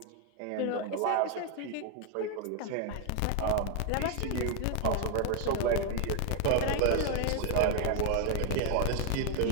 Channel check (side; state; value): both; different; correlation 0.01